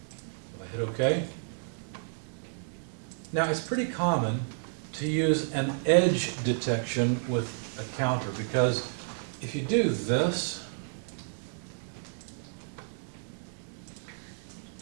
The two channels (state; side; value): silent; left; digital silence